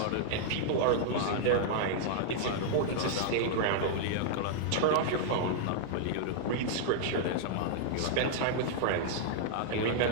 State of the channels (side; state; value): both; different; correlation -0.01